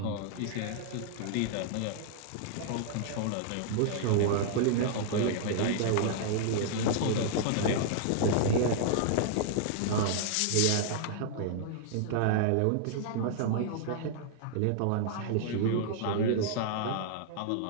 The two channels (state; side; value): different; both; correlation -0.01